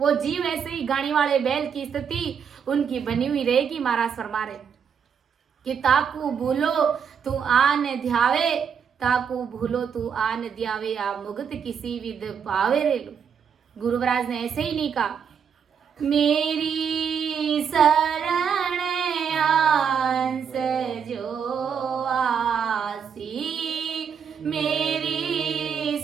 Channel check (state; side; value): quieter; left; 7.2 dB